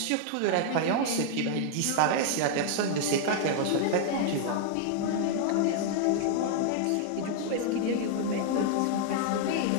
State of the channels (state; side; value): different; both; correlation 0.00